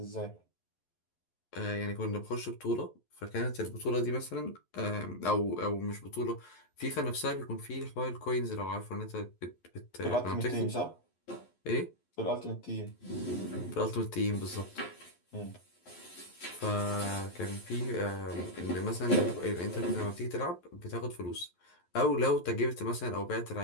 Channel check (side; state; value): right; late; 11 ms